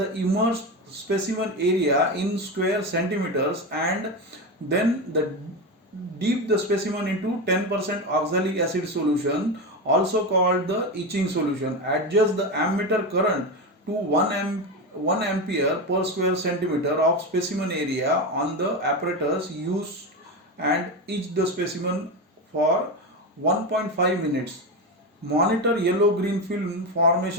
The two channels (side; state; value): both; normal; correlation 0.17